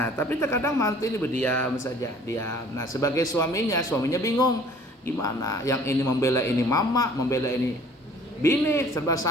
tapi terkadang mantu ini berdiam saja, diam. Nah, sebagai suaminya bingung gimana? Yang ini membela ini mama, membela ini bini, serba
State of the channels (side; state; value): both; normal; correlation 0.52